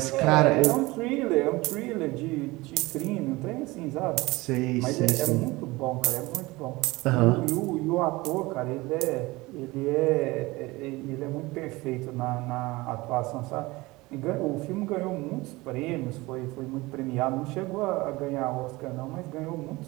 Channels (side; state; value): left; quieter; 21.5 dB